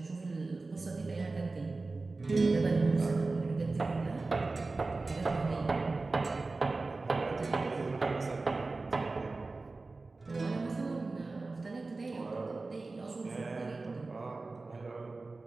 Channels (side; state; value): left; quieter; 3.5 dB